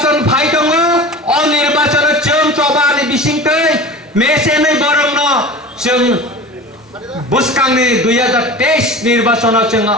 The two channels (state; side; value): normal; both; correlation 0.35